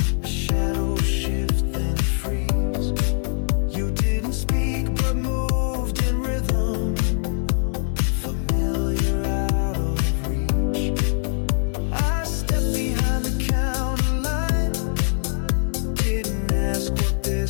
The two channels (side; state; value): right; silent; digital silence